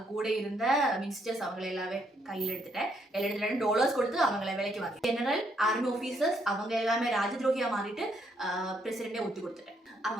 கூட இருந்த மினிஸ்டர்ஸ் அவங்களை எல்லாமே கையில் எடுத்துட்டேன். டாலர்ஸ் கொடுத்து அவங்களை விலைக்கு வாங்கி ஜெனரல் ஆர்மி ஆஃபீஸர்ஸ் அவங்க எல்லாமே ராஜ துரோகியா மாறிட்டு பிரசிடென்டே ஒத்து கொடுத்துட்டேன்.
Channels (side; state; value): both; normal; correlation 0.73